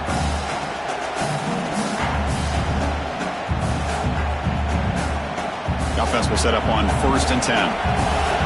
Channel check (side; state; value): both; identical; correlation 1.00